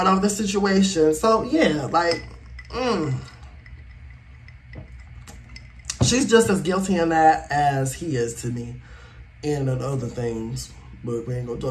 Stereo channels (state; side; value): identical; both; correlation 1.00